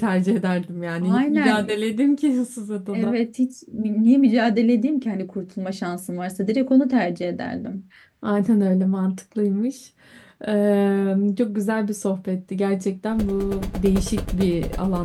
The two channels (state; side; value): identical; both; correlation 1.00